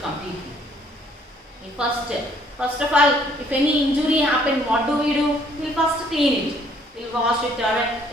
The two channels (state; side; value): normal; both; correlation 0.63